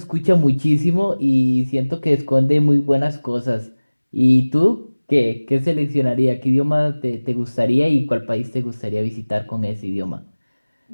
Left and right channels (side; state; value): both; inverted; correlation -1.00